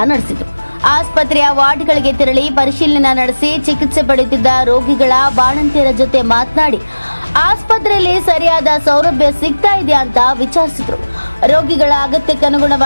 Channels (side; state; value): both; inverted; correlation -1.00